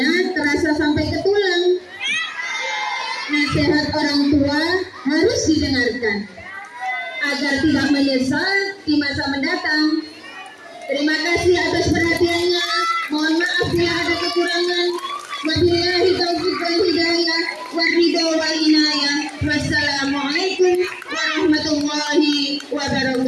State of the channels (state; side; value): identical; both; correlation 1.00